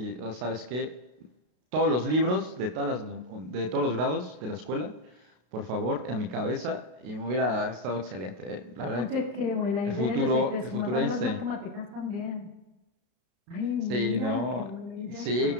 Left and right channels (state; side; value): late; left; 32 ms